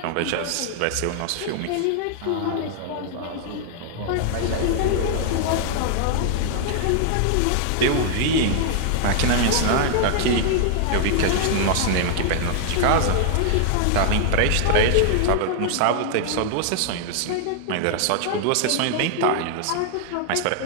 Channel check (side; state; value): both; different; correlation -0.01